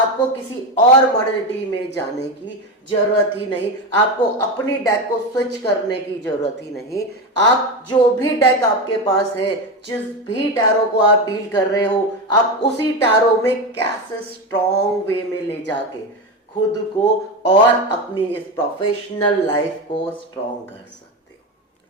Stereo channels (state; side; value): normal; both; correlation 0.17